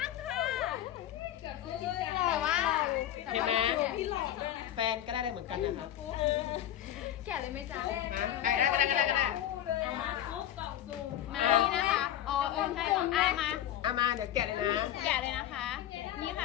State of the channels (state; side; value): quieter; right; 12.1 dB